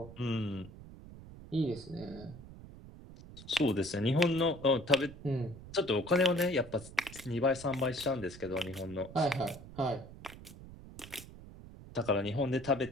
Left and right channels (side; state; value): right; noise; rumble, 16 dB below the sound